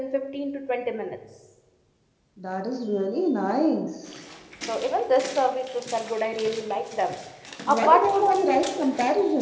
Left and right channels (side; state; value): both; identical; correlation 1.00